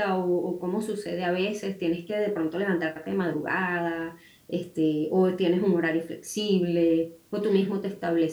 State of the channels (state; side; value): identical; both; correlation 1.00